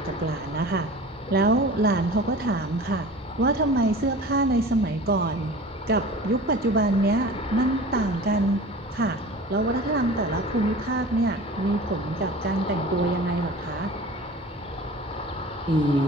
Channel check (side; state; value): both; normal; correlation 0.39